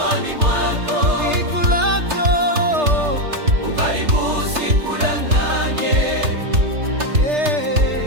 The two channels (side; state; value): left; late; 3.3 ms